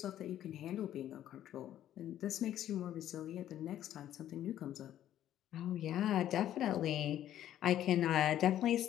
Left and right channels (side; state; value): right; quieter; 11.8 dB